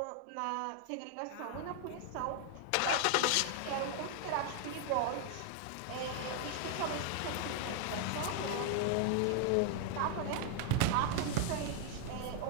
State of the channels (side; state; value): both; different; correlation 0.00